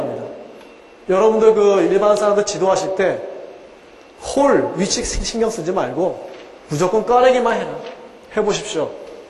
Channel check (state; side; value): identical; both; correlation 1.00